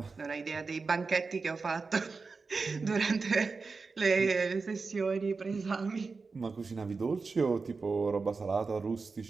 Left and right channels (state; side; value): quieter; left; 4.4 dB